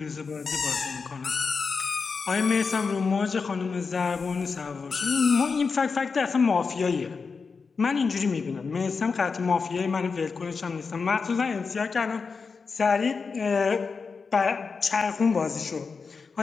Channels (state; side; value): quieter; right; 5.0 dB